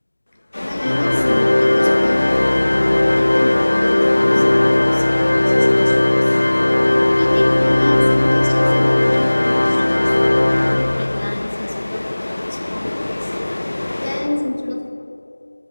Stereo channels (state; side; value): inverted; both; correlation -1.00